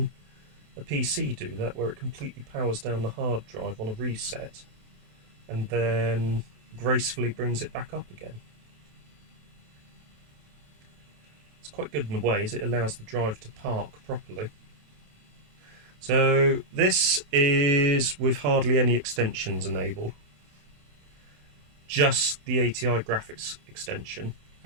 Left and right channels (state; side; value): late; left; 27 ms